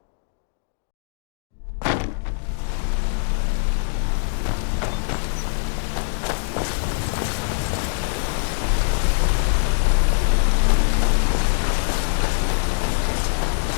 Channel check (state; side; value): silent; right; digital silence